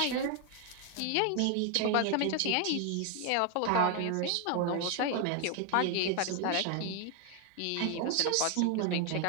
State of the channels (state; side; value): different; both; correlation 0.01